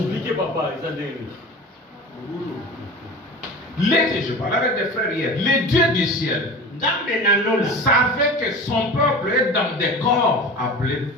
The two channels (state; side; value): normal; both; correlation 0.34